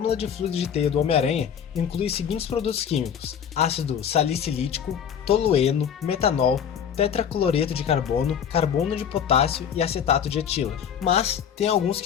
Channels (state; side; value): quieter; right; 8.2 dB